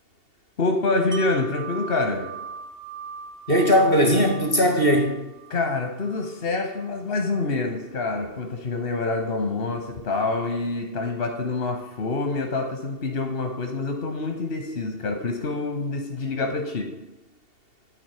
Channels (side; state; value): right; late; 2.7 ms